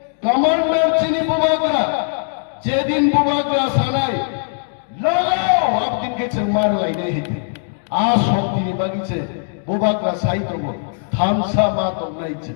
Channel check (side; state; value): right; silent; digital silence